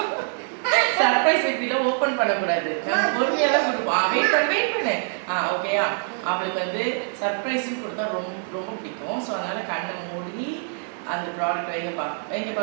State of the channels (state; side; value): silent; left; 55 dB below the other